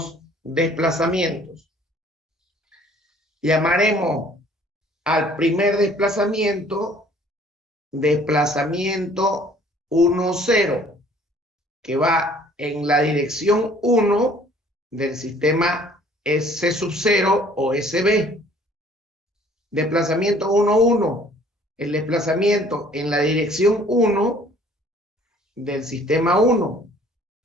desplazamientos. Llamaremos al primer desplazamiento 1, 0, que va en la dirección 1 del sistema S0 o SB. Desplazamiento 1, 1, el desplazamiento en la dirección 1 del sistema 1.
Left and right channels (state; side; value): normal; both; correlation 0.56